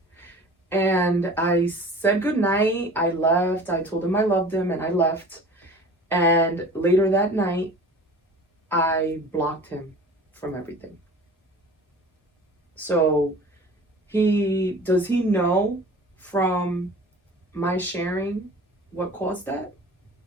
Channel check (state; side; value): normal; both; correlation 0.42